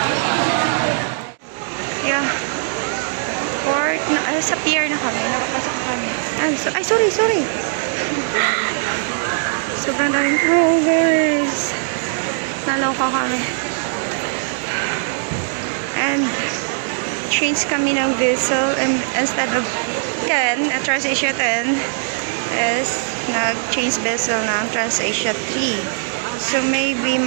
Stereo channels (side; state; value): left; silent; digital silence